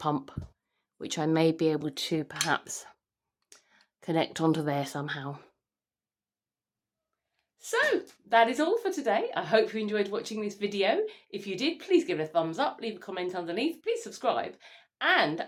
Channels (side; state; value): both; identical; correlation 1.00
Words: which I may be able to perhaps connect onto there somehow. So that is all for today. I hope you enjoyed watching this video. If you did, please give it a thumbs up, leave a comment underneath, please subscribe,